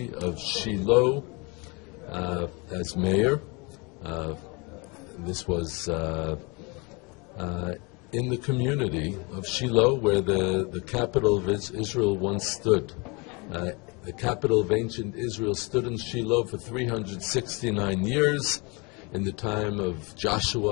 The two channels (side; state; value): right; quieter; 29.0 dB